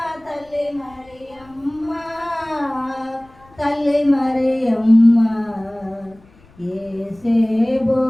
తల్లి మరియమ్మ తల్లి మరియమ్మ ఏసేబో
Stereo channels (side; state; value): left; noise; rumble, 28 dB below the sound